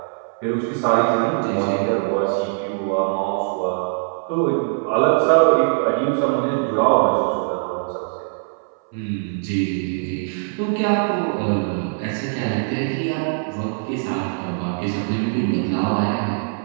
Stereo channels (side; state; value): left; silent; 59 dB below the other